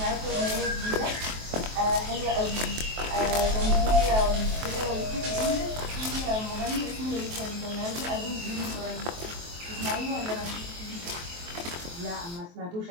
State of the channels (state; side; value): late; left; 23 ms